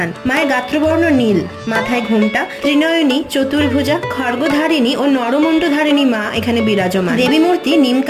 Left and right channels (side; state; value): both; identical; correlation 1.00